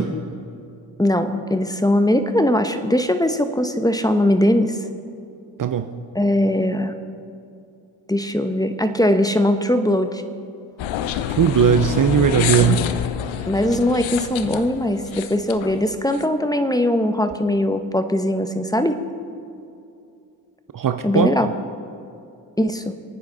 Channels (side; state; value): both; normal; correlation 0.59